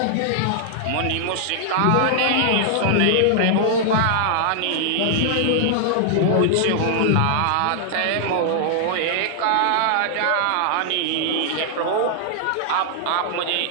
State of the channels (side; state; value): both; different; correlation -0.01